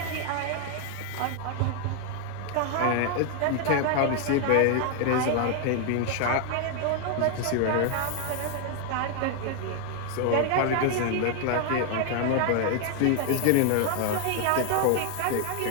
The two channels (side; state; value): both; different; correlation 0.00